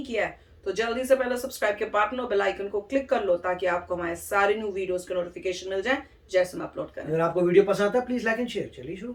किया है तो जल्दी से पहले सब्सक्राइब के बटन और बेल आइकन को क्लिक कर लो ताकि आपको हमारे सारे न्यू वीडियोस के नोटिफिकेशन मिल जाए जैसे हम अपलोड करें। अगर आपको वीडियो पसंद आता है प्लीज लाइक एंड शेयर। चलिए शुरू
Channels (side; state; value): both; identical; correlation 1.00